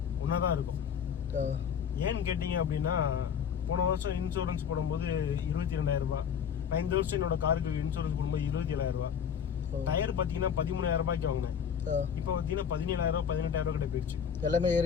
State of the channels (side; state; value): right; quieter; 7.7 dB